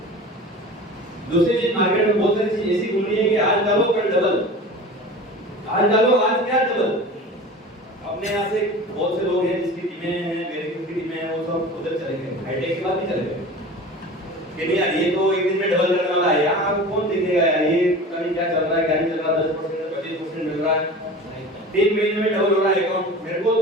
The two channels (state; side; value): normal; both; correlation 0.36